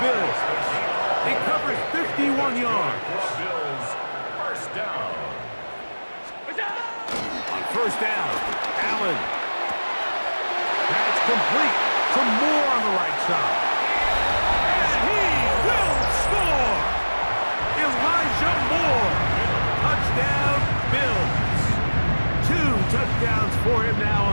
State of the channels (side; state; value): both; inverted; correlation -1.00